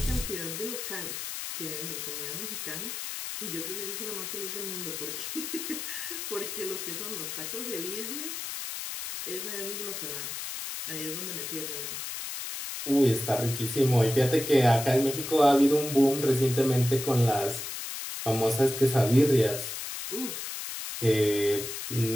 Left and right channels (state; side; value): noise; left; hiss, 6 dB below the sound